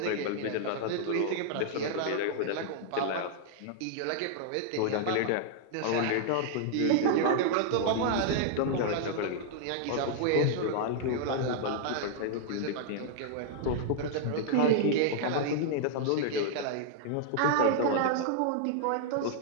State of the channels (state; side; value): different; both; correlation -0.01